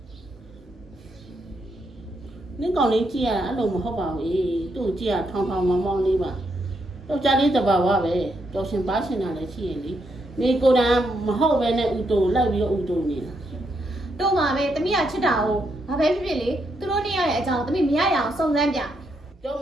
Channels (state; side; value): normal; both; correlation 0.79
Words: နင့်ကောင်လေးကြည့်ရအဲ့လိုမဟုတ်ပါဘူးသူ့ကြည့်ရထောင်မောင်းလေးပါတော့ကြားလေးတဘာဝပဲတော်ရှင်ပါရှင်တာလည်းရှိရင်လေနေကိုယ်တိုင်မဟုတ်ပဲနဲ့ဥတုလိုက်ပြီးတော့ဥတုနေတာ တို့မှာပဲသမီးကချစ်တာကိုဘာပဲဖြစ်ဖြစ်လေသူတို့နှစ်ယောက်ရဲ့အကြောင်းသမီးမရရအောင်စုံစမ်းပြ ကြောက်မ